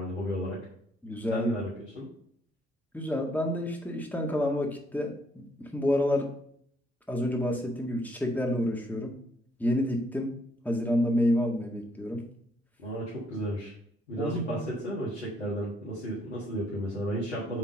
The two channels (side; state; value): both; normal; correlation 0.69